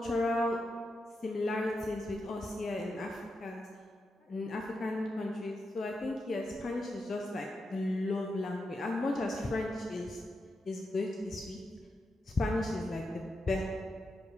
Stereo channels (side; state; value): both; normal; correlation 0.86